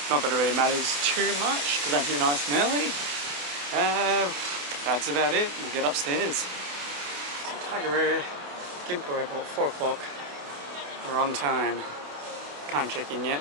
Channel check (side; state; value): left; late; 28 ms